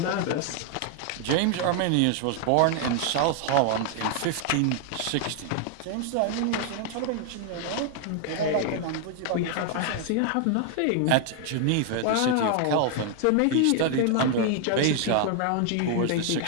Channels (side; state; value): both; different; correlation 0.00